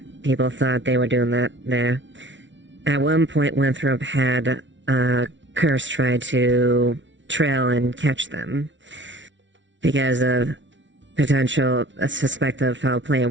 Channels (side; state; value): left; late; 0.55 ms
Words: People thought they were doing that there. At one point, Winthrop had Curse try to trail and catch them because of potential suspect of foul play and